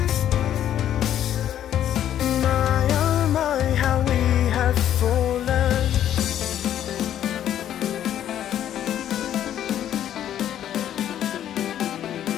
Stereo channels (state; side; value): quieter; right; 10.9 dB